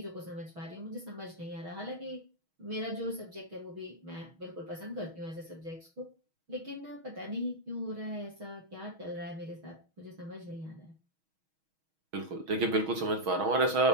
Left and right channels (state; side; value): late; left; 6.3 ms